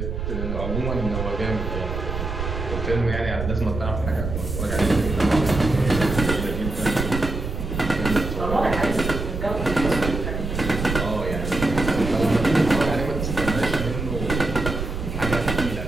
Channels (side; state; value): right; noise; rumble, 4 dB below the sound